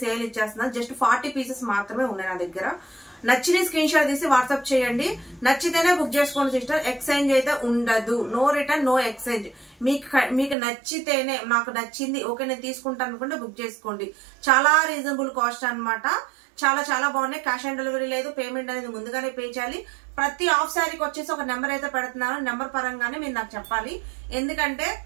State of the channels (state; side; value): drops out; left; at 10.6 s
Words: సేల్ ఇచ్చేస్తున్నాను. జస్ట్ 40 పీసెస్ మాత్రమే ఉన్నాయి నా దగ్గర. నచ్చిన స్క్రీన్ షాట్ తీసి వాట్సాప్ చేయండి. నచ్చితేనే బుక్ చేసుకోండి సిస్టర్. ఎక్స్చేంజ్ అయితే ఉండదు. No return, no exchange. మీకు నచ్చితేనే, నాకు నచ్చింది ఓకే నేను తీసుకుంటాను అనుకుంటే బుక్ చేసుకోండి. చాలా రీజనబుల్ కాస్ట్ అన్నమాట. చాలా చాలా బాగున్నాయి. క్యాష్ ఆన్ డెలివరీ లేదు. పేమెంట్ అనేది ముందుగానే పే చేయాలి. ప్రతి ఆఫ్ శారీకి వచ్చేసి ఒక నెంబర్ అయితే పెడుతున్నాను. నెంబర్ పరంగానే మీరు నాకు చెప్పాలి. ఎందుకంటే